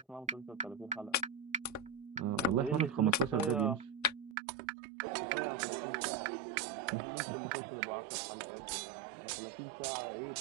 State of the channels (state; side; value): drops out; left; at 4.4 s